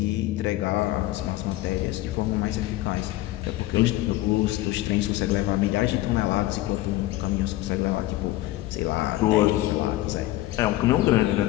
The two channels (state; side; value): quieter; right; 16.5 dB